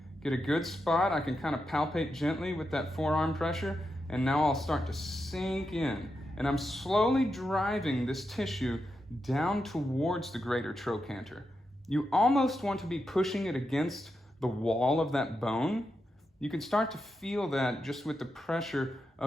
Get a good spot. I can kind of palpate gently with that forearm pressure, and now I'll start to sink in. And I'm slowly driving this tissue down towards the greater trochanter. You almost want to be pushing it against the wall of that bone. You can start to feel that just with the pressure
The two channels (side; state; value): both; normal; correlation 0.87